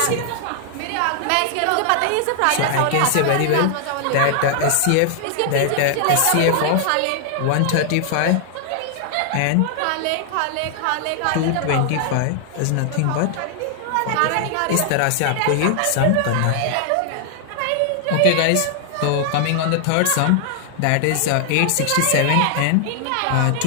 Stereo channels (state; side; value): different; both; correlation 0.00